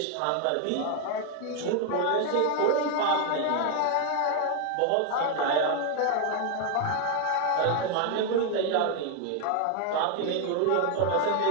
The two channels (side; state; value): both; different; correlation 0.00